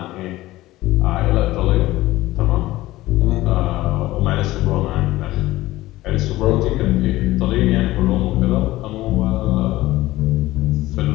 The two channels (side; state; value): right; quieter; 17.2 dB